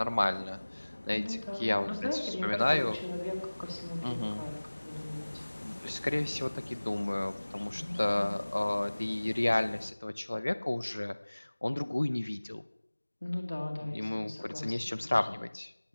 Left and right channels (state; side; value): inverted; both; correlation -1.00